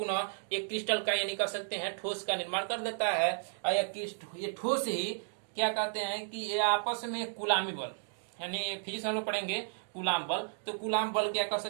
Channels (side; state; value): left; silent; digital silence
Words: एक क्रिस्टल का यानी कह सकते हैं ठोस का निर्माण कर देता है। ये ठोस ही क्या कहते हैं कि ये आपस में कुलामी बल, यानी फिजिक्स हम लोग पढ़ेंगे कूलाम बल। तो कूलाम बल क्या कर